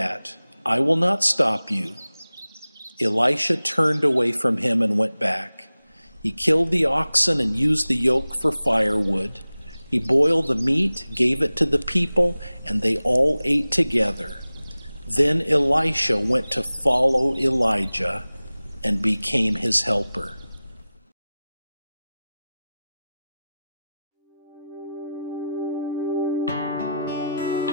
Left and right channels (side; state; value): both; inverted; correlation -0.95